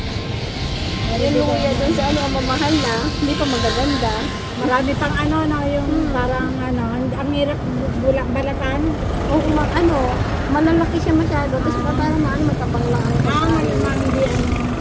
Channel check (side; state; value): both; identical; correlation 1.00